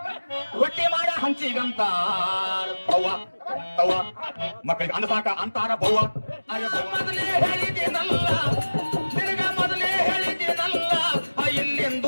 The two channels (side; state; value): both; inverted; correlation -1.00